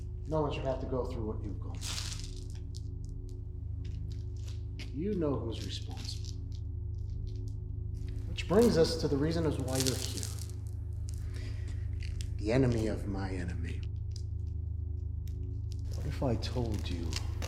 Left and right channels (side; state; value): both; identical; correlation 1.00